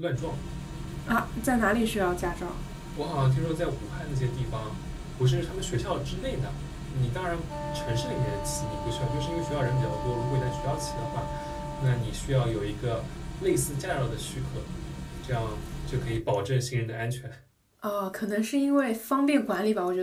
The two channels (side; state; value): both; identical; correlation 1.00